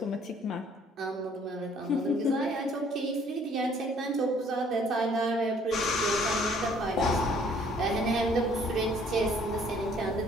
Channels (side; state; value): both; normal; correlation 0.60